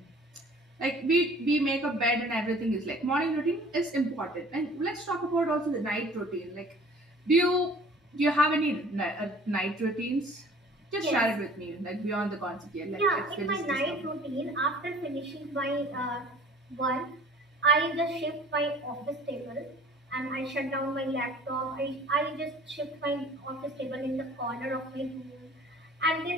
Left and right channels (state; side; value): normal; both; correlation 0.49